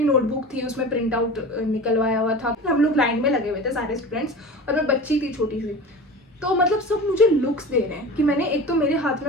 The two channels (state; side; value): normal; both; correlation 0.33